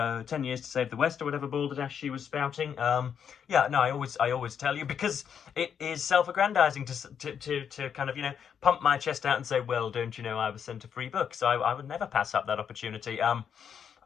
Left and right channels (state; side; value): quieter; right; 7.8 dB